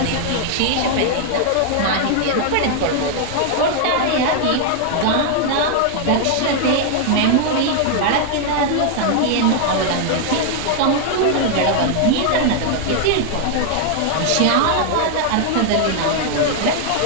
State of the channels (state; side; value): different; both; correlation 0.00